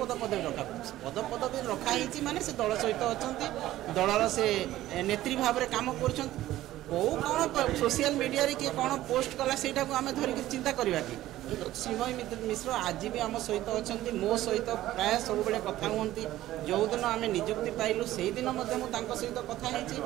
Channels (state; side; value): quieter; left; 14.7 dB